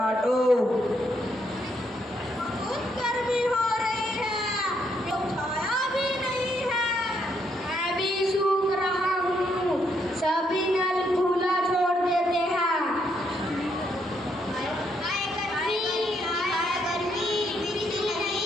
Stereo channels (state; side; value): normal; both; correlation 0.75